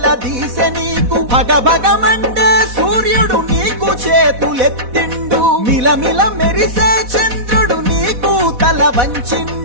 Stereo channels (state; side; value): late; left; 4.1 ms